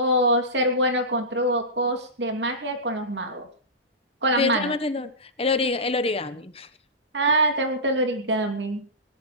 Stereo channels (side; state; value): both; normal; correlation -0.19